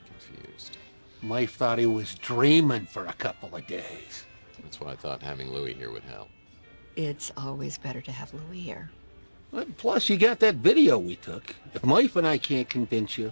confused. Life thought he was dreaming for a couple of days. That's why I thought having Louis here would help. It's always better to have Louis here. Plus, you got that video we took. If Life and I can't convince you,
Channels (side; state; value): both; inverted; correlation -1.00